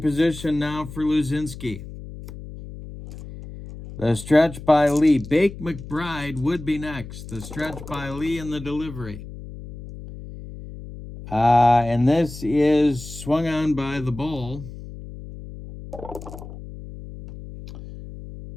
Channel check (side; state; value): left; noise; hum, 13 dB below the sound